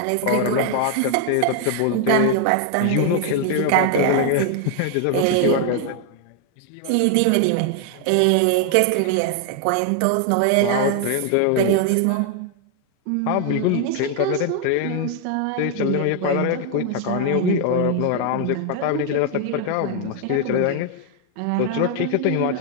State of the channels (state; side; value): different; both; correlation 0.00